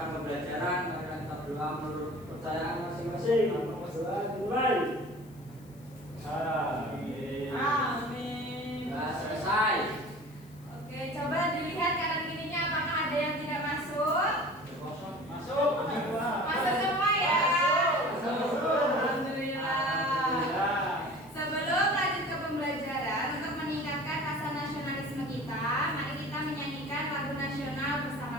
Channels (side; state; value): left; noise; hiss, 27 dB below the sound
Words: pembelajaran. Mari kita berdoa menurut kepercayaan masing-masing. Berdoa dimulai. Amin. Amin. Sudah selesai. Oke, coba dilihat kanan kirinya apakah ada yang tidak masuk? Masuk. Masuk semua ya. Masuk. Alhamdulillah. Sebelum lanjut ke pembelajaran, untuk meningkatkan rasa nasionalisme kita, mari kita menyanyikan lagu nasional